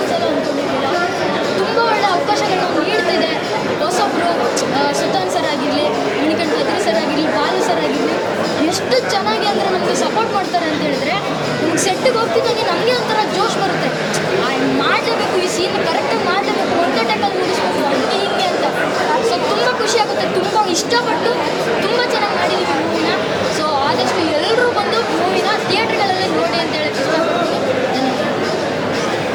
ಅಂದ್ಕೊಂಡಿರಲಿಲ್ಲ. ತುಂಬ ಒಳ್ಳೆ ಅವಕಾಶಗಳನ್ನ ನೀಡ್ತಿದೆ ಹೊಸೊಬ್ಬರು. ಸುತಾನ್ ಸರ್ ಆಗಿರಲಿ, ಮಣಿಕಂಠ ಅದ್ರಿ ಸರ್ ಆಗಿರಲಿ, ಬಾಲು ಸರ್ ಆಗಿರಲಿ, ಎಷ್ಟು ಚೆನ್ನಾಗಿ ಅಂದರೆ ನಮಗೆ ಸಪೋರ್ಟ್ ಮಾಡ್ತಾರೆ ಅಂತ ಹೇಳಿದ್ರೆ ನಮ್ಗೆ ಸೆಟ್ಟಿಗೆ ಹೋಗ್ತಿದ್ದಾಗೆ ನಮಗೆ ಒಂಥರ ಜೋಶ್ ಬರುತ್ತೆ. ಮಾಡಲೇಬೇಕು, ಈ ಸೀನ್ ಕರೆಕ್ಟಾಗಿ ಮಾಡಲೇಬೇಕು, ಒಂದೇ ಟೈಮಲ್ಲಿ ಮುಗಿಸ್ಬೇಕು, ಹಂಗೆ ಹಿಂಗೆ ಅಂತ. ಸೊ ತುಂಬ ಖುಷಿಯಾಗುತ್ತೆ. ತುಂಬ ಇಷ್ಟಪಟ್ಟು ತುಂಬ ಚೆನ್ನಾಗಿ ಮಾಡಿದ್ದೀವಿ ಮೂವಿನ. ಸೊ ಆದಷ್ಟು ಎಲ್ಲರೂ ಬಂದು ಮೂವಿನ ಥಿಯೇಟ್ರ್ಗಳಲ್ಲೇ ನೋಡಿ ಅಂತ ಹೇಳಕ್ಕೆ ಇಷ್ಟಪಡ್ತೀನಿ.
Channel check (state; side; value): identical; both; correlation 1.00